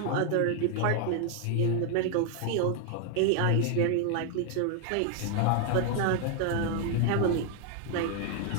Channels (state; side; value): different; both; correlation 0.00